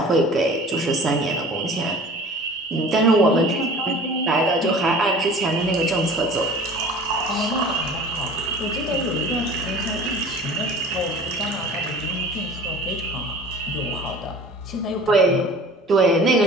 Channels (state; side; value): normal; both; correlation 0.44